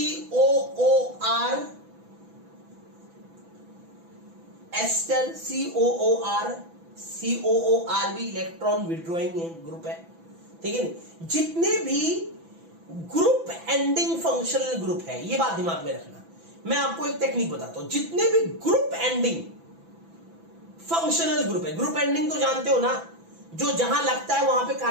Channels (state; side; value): late; left; 6.0 ms